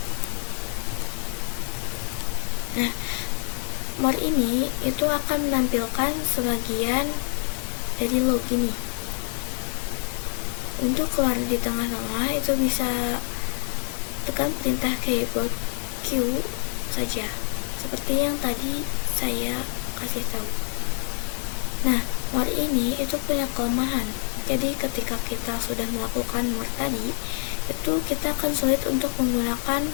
Nah, more ini itu akan menampilkan sebagian dari log ini. Untuk keluar di tengah-tengah itu bisa tekan perintah keyboard Q saja, seperti yang tadi saya kasih tahu. Nah, more ini itu punya kelemahan. Jadi ketika kita sudah melakukan more tadi, itu kita akan sulit untuk menggunakan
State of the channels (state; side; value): silent; right; digital silence